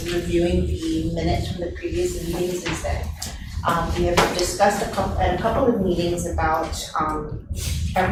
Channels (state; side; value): identical; both; correlation 1.00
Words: reviewing the minutes from the previous meetings is that we have discussed at a couple of meetings about